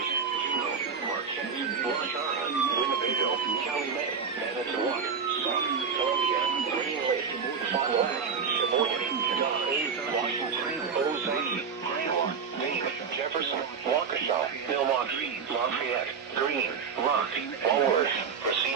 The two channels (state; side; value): quieter; left; 6.1 dB